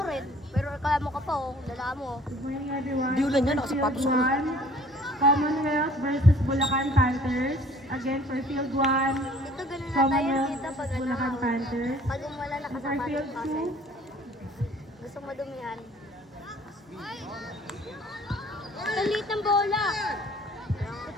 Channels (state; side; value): normal; both; correlation 0.54